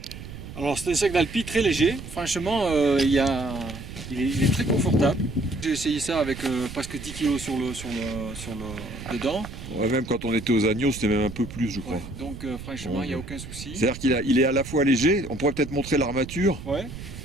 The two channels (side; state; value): right; noise; rumble, 12 dB below the sound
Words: Alors c'est un sac d'Alpi très léger, franchement il est très confortable. J'ai essayé ça avec presque 10 kg dedans. Ouais, même quand on était aux Agneaux c'était même un peu plus je crois. Ouais, donc franchement il n'y a aucun souci. C'est-à-dire qu'il est à la fois léger, on pourrait peut-être montrer l'armature. Ouais.